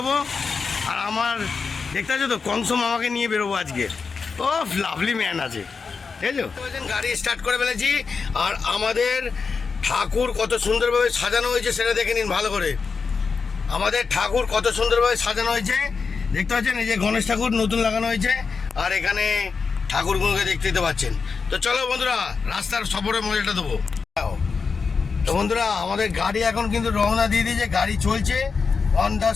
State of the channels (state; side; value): quieter; right; 5.1 dB